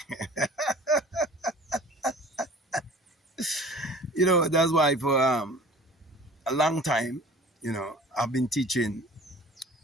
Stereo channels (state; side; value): normal; both; correlation 0.45